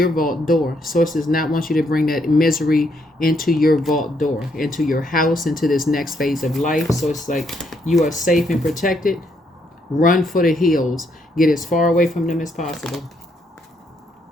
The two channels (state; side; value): normal; both; correlation 0.74